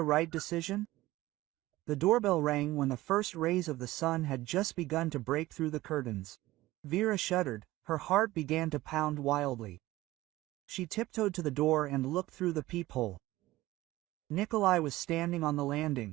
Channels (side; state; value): left; quieter; 17.4 dB